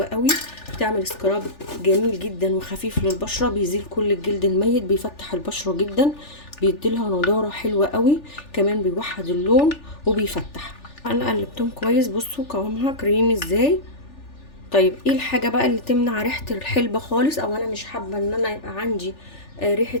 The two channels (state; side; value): late; right; 3.4 ms